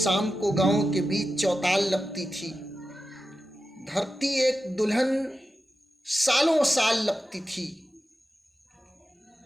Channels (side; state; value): both; normal; correlation 0.92